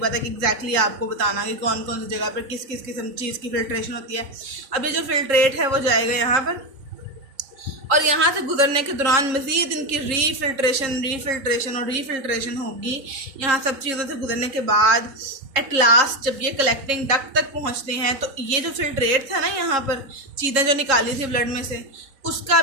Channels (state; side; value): late; left; 3.7 ms